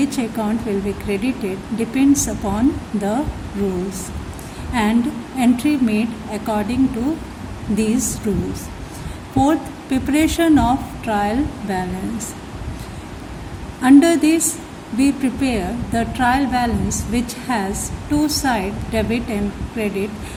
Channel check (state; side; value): identical; both; correlation 1.00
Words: account will be credited depends upon the rules, and entry made according to these rules. Fourth, preparation of trial balance. Under this, we prepare the trial balance which has two sides, debit and credit,